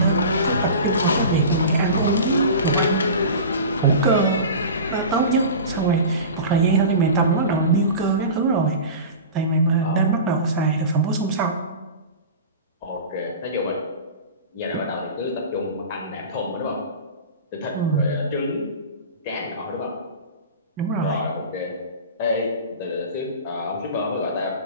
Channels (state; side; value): inverted; both; correlation -0.33